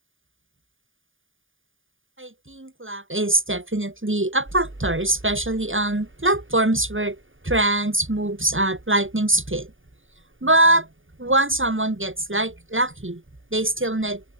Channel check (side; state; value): left; late; 0.58 ms